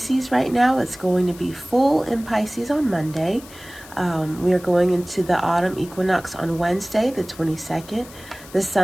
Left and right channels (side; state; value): left; noise; hiss, 19 dB below the sound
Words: right now. It's going to be full in Pisces on Monday. We are going into the autumn equinox on Wednesday, the 22nd. The